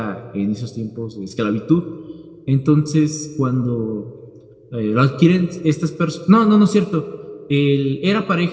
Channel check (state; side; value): identical; both; correlation 1.00